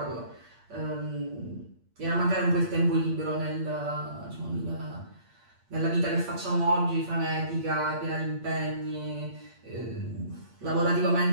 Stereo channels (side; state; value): left; late; 8.6 ms